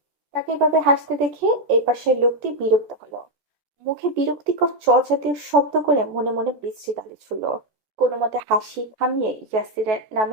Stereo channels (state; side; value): late; left; 14 ms